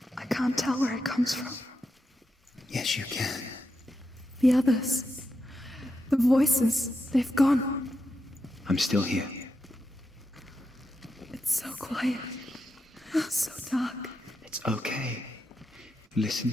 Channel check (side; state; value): both; normal; correlation 0.86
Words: I can't tell where it comes from. Yes, you can. The others. The voices. They've gone. I'm still here. It's so quiet. So dark. It's okay. Listen